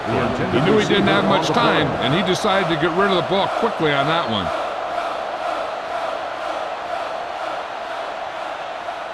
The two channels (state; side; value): identical; both; correlation 1.00